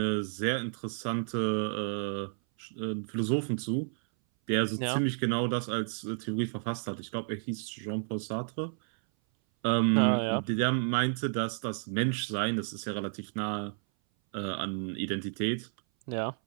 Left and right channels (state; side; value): silent; left; 57 dB below the other